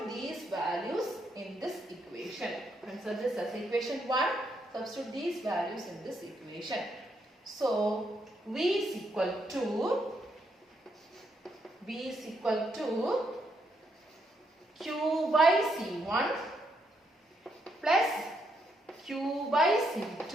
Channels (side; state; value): both; normal; correlation 0.77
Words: these values in this equation. Consider this as equation 1. Substitute these values in this equation. So, V is equal to Q by C1 plus Q by